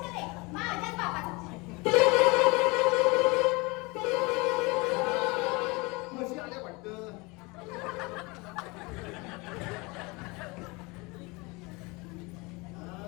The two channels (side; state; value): right; quieter; 25.9 dB